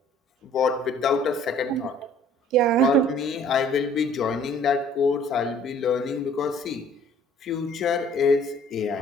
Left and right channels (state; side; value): normal; both; correlation 0.55